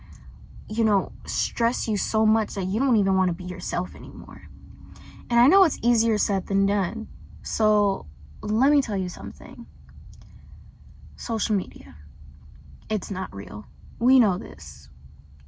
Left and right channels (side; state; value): both; identical; correlation 1.00